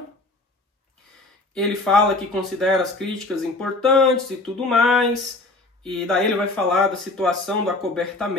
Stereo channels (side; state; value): right; quieter; 3.1 dB